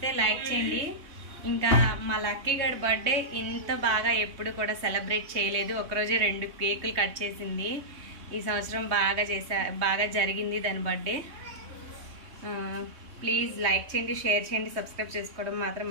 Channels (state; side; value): late; left; 3.2 ms